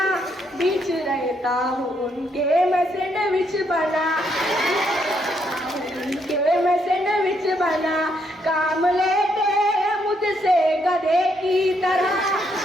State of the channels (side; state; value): both; normal; correlation 0.74